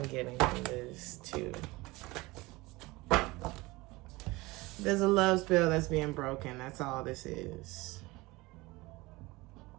getting from this too. There's a love spell that's being broken. That's all this is.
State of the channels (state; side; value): quieter; left; 22.0 dB